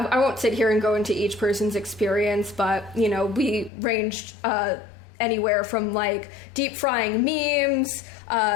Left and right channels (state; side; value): drops out; right; at 3.7 s